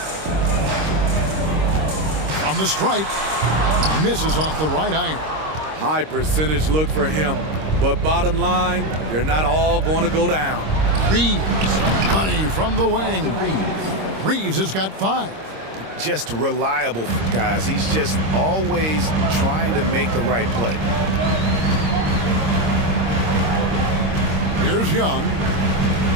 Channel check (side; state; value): left; late; 26 ms